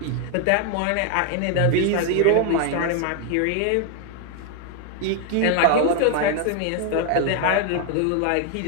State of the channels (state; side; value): different; both; correlation 0.00